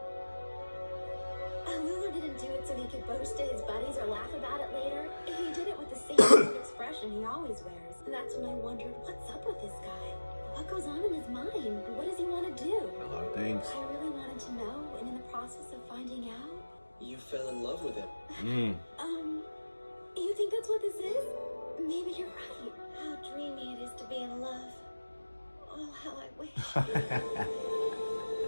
Lulu didn't do it so he could boast to his buddies or laugh about it later. He did it with the same sort of expression he always wears. And that's when I wondered, what's up with this guy? What goes on in his mind? What does he want to do? A lot of things. I really wanted to know, and in the process of finding out... You fell in love with him. You think that's what this is? Maybe you're right. How dreamy it is to be in love. Oh, how I wish.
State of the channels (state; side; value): inverted; both; correlation -1.00